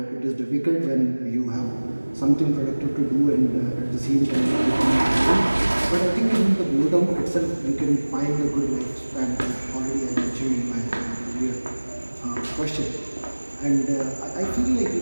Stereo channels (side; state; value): both; inverted; correlation -1.00